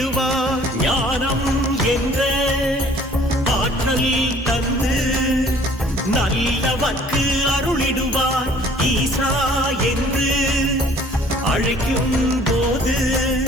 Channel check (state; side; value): normal; both; correlation 0.55